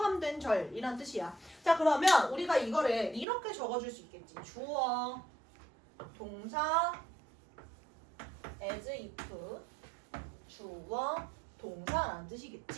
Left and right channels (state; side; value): drops out; left; at 3.2 s